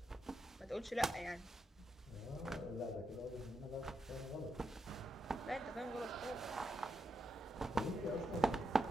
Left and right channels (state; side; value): normal; both; correlation 0.84